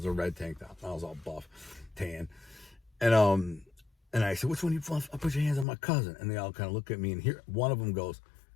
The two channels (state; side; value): drops out; right; at 5.7 s